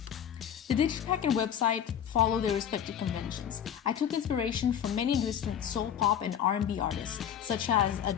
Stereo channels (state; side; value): quieter; right; 9.2 dB